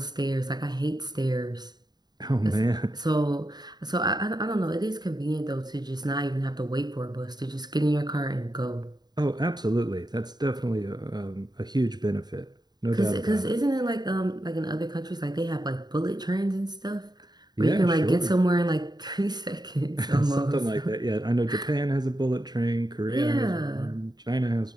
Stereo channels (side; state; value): left; late; 0.20 ms